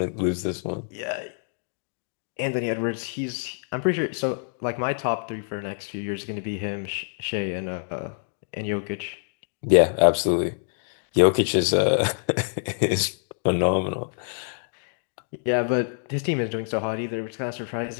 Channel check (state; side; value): silent; right; 59 dB below the other